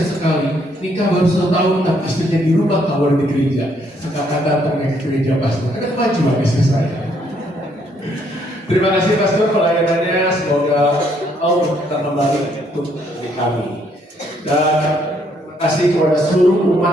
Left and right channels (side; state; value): both; normal; correlation 0.69